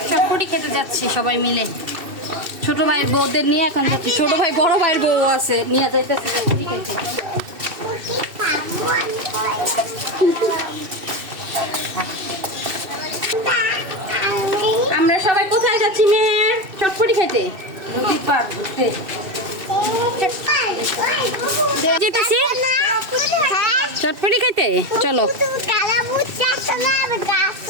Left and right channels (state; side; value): late; left; 2.6 ms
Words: চটপটি খেতে যাচ্ছি সবাই মিলে। ছোট ভাইয়ের বউদের নিয়ে এখন যাচ্ছি। ছোট ভাই বড় ভাইয়ের বউ আছে, নিয়ে যাইতেছি চটপটি খেতে। আমরা সবাই কোথায় যাচ্ছি মেয়ে? চটপটি খেতে। যেতেছি চটপটি খাইতে। চলো